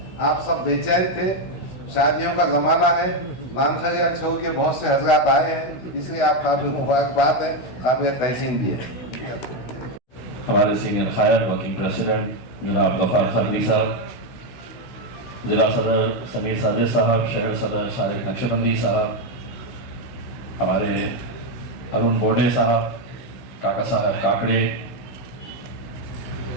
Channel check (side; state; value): right; late; 16 ms